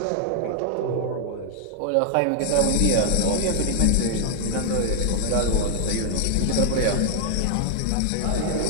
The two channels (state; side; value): different; both; correlation 0.00